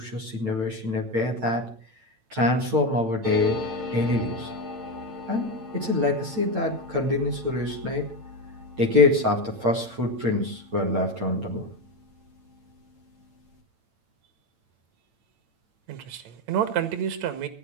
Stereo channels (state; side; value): late; left; 8.9 ms